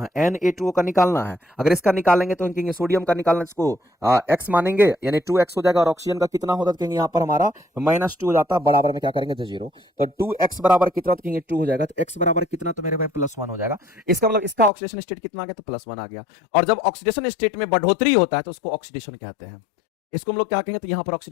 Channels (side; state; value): right; drops out; at 14.7 s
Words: Na2O का निकालना है। अगर इसका निकालेंगे तो हम कहेंगे सोडियम का निकालना, इसको x मानेंगे, यानी 2x हो जाएगा। और ऑक्सीजन का कितना होता है? तो कहेंगे यहाँ पर हमारा -2 हो जाता है, बराबर में क्या करेंगे? तो 0। तो 2x बराबर कितना? तो कहेंगे 2 हो जाएगा। तो x बराबर कितना? तो मेरे भाई +1 हो जाएगा। इसका मतलब इसका ऑक्सीडेशन स्टेट कितना आ गया? तो +1 आ गया। और जब ऑक्सीडेशन स्टेट में बढ़ोतरी होता है तो उसको ऑक्सीडेशन कहते हैं। इसको हम लोग क्या कहेंगे? तो यहाँ पर